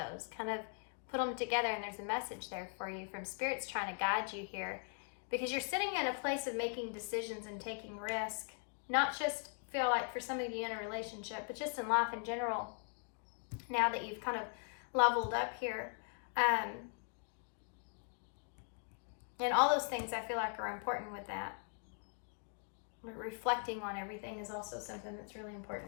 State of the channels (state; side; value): silent; right; 51 dB below the other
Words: kind of put them together, and there's a message there for you from Spirit's trying to guide you here, because you're sitting in a place of making decisions and taking risk, not just feel like for some of you in a relationship, but just in life in general, now that you've kind of leveled up here. And all those things I feel like are important with that. Reflecting on everything is also something that's really